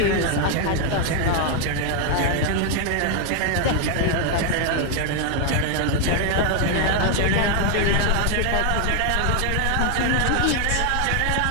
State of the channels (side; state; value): both; different; correlation 0.01